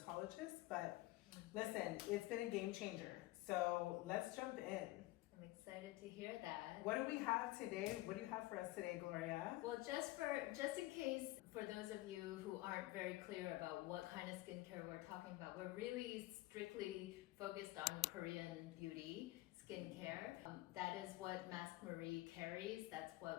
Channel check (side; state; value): right; quieter; 18.5 dB